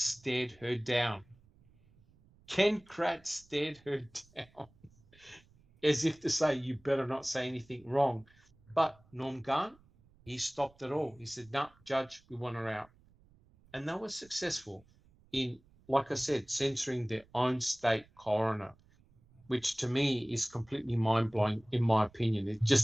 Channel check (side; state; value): right; noise; rumble, 30 dB below the sound